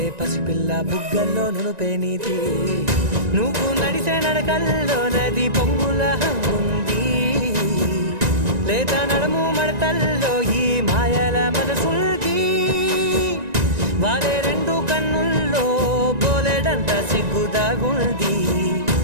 పసిపిల్ల బుగ్గల్లో నునుపే నీది నువ్వు నడిసే నడకల్లో నది పొంగుల ఉంది లేదా నడుము మడతల్లో ఈ మాయల మనసుల్ది వారే రెండు కన్నుల్లో బోలెడంత సిగ్గుదాగుంది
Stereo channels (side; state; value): left; late; 1.9 ms